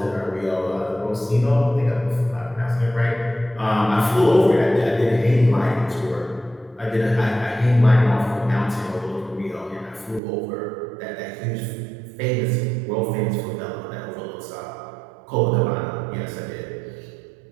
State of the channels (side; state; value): left; drops out; at 10.2 s